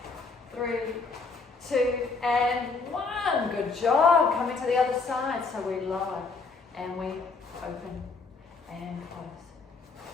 3, 2, and 1. Good job. Coming to the other side. So we lower and we open and close.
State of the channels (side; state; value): right; quieter; 4.3 dB